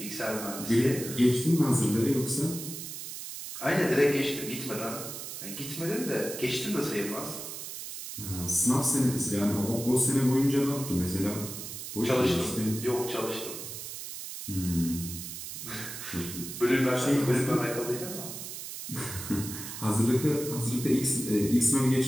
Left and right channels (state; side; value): noise; right; hiss, 9 dB below the sound